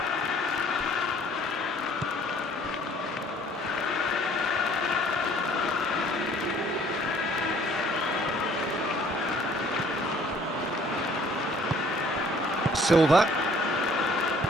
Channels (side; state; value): both; normal; correlation 0.57